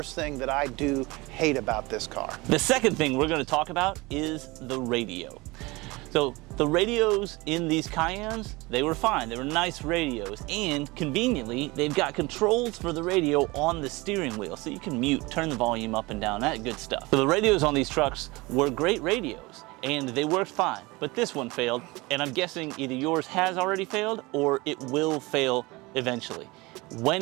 thing that I do hate about this car. The second thing we're gonna talk about is the radio. So the radios in these Cayennes, they were fine. They were nice radios, and conveniently, they've got controls for the radio on the steering wheel, so you can mute, turn the volume up and down, that good stuff. So the radios on these trucks were great radios, and they worked fine, but this one failed, and I'm guessing either yours has already failed or it will fail eventually. When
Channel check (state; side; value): quieter; left; 23.1 dB